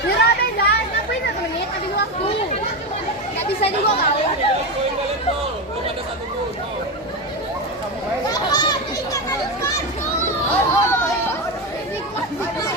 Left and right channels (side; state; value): both; normal; correlation 0.16